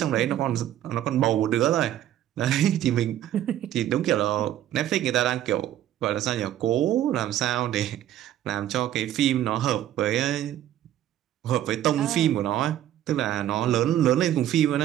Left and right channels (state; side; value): quieter; left; 12.1 dB